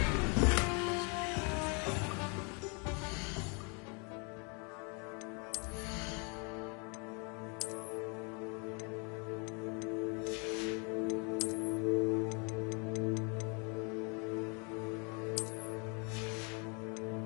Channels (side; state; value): right; quieter; 34.5 dB